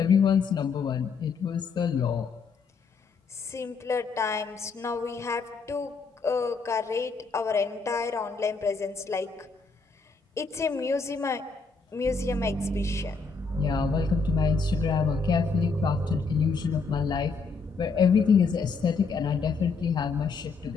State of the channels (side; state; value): right; quieter; 4.7 dB